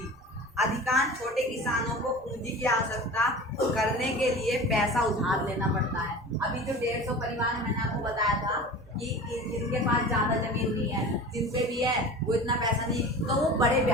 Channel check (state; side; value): normal; both; correlation 0.36